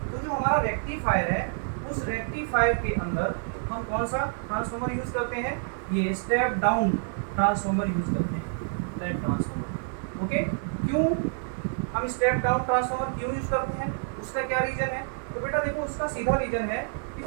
तो जो हमारा रेक्टिफायर है उस रेक्टिफायर के अंदर हम कौन सा ट्रांसफॉर्मर यूज करते हैं, ये स्टेप डाउन ट्रांसफॉर्मर यूज करते हैं, स्टेप ट्रांसफॉर्मर। ओके, क्यों हम स्टेप डाउन ट्रांसफॉर्मर क्यों यूज करते हैं, उसका क्या रीजन है? तो बेटा देखो उसका सीधा रीजन है कि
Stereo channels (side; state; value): left; silent; 58 dB below the other